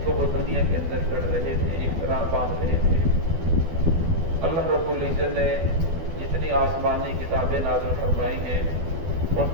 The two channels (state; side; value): late; left; 12 ms